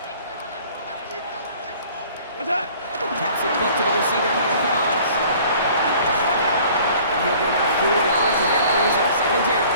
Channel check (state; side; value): inverted; both; correlation -0.51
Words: Taps it quick to the receiver coming across. And he'll get about 4 yards as that brings up second down.